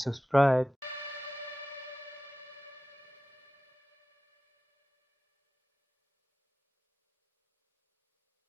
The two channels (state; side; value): normal; both; correlation 0.95